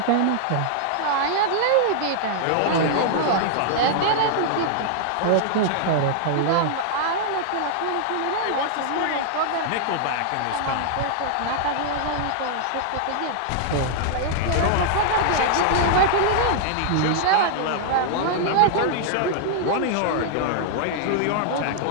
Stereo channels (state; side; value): different; both; correlation -0.01